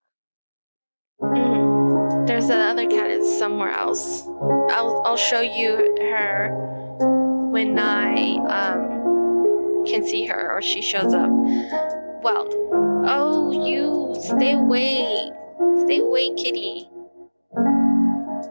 There's the other cat is somewhere else. I'll show you her when I can see her or she shows up. Well, oh, you stay away, kitty.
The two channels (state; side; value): inverted; both; correlation -1.00